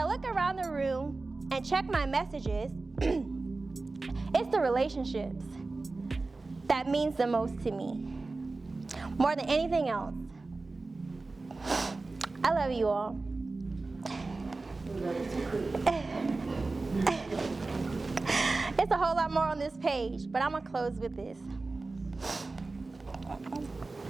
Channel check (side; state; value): left; quieter; 3.5 dB